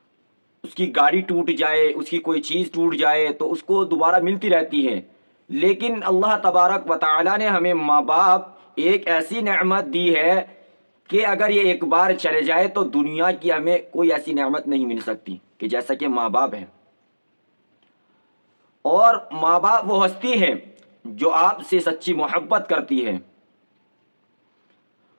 اس کی گاڑی ٹوٹ جائے، اس کی کوئی چیز ٹوٹ جائے تو اس کو دوبارہ ملتی رہتی ہے۔ لیکن اللہ تبارک و تعالی نے ہمیں ماں باپ ایک ایسی نعمت دی ہے کہ اگر یہ ایک بار چلے جائے تو دنیا کی ہمیں کوئی ایسی نعمت نہیں مل سکتی کہ جیسا کہ ماں باپ ہے۔ اور ماں باپ وہ ہستی ہے جو آپ سے سچی محبت کرتی ہے۔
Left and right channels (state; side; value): inverted; both; correlation -1.00